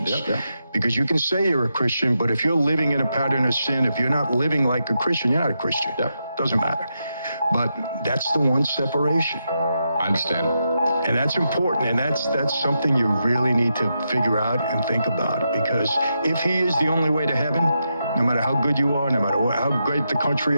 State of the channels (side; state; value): both; inverted; correlation -0.85